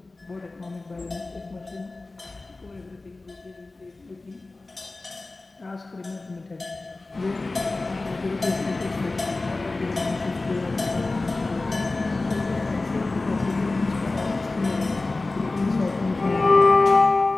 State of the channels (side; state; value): right; quieter; 3.3 dB